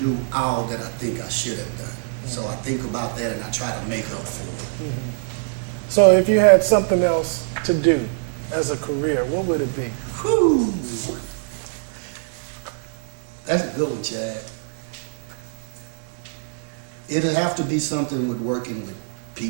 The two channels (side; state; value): left; silent; digital silence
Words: all that I think I should have done. So I think about that and I try to make up for it. So if you had something else to do as a career, what would it be? Whew. That's a good one, Chad. It'll have to be something with working with